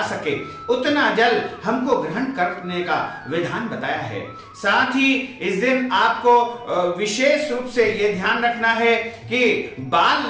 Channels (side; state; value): both; identical; correlation 1.00